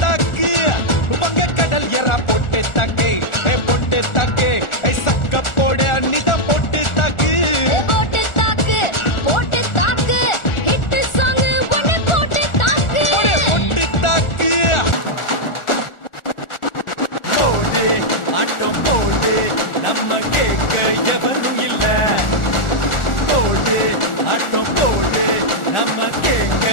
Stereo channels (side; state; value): right; late; 1.4 ms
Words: தாக்கு வங்க கடல் எறா பொட்டு தாக்கு பொட்டு தாக்கு சக்க போட அன்னிதான் பொட்டு தாக்கு போட்டு தாக்கு போட்டு தாக்கு ஹிட் சாங் ஒன்னு போட்டு தாக்கு பொட்டு தாக்கு போடு ஆட்டம் போடு நம்ம கேட்க எவரும் இல்ல. போடு ஆட்டம் போடு நம்ம கேட்க